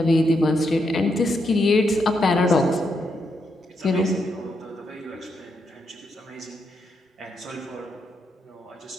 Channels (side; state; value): both; normal; correlation 0.81